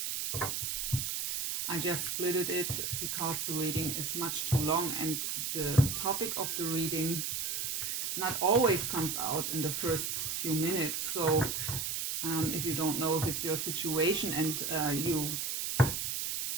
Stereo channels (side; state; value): right; noise; hiss, 2 dB below the sound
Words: I just splitted it because the reading is much too long and the topic of the reading not always comes out in the first few minutes. So if you don't know if it's your situation and you